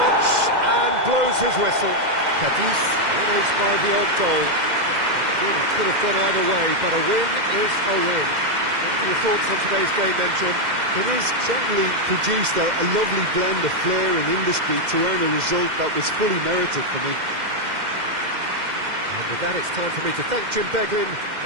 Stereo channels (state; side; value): late; left; 2.1 ms